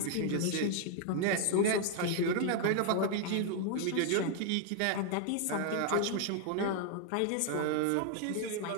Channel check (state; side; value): different; both; correlation 0.00